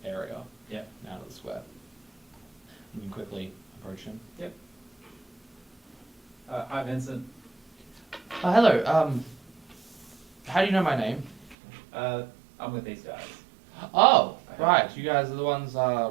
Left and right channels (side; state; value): left; drops out; at 11.6 s